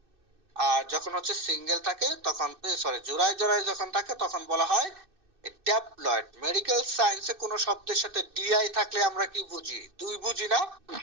আর যখন হচ্ছে সিঙ্গেল থাকে, তখন জোড়ায় জোড়ায় যখন থাকে, তখন বলা হয় ড্যাপ্লয়েড। মেডিকেল সায়েন্সে কোন শব্দের সাথে ডিআই থাকলে আমরা কি বুঝি? দুই বুঝি না?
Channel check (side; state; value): left; late; 2.6 ms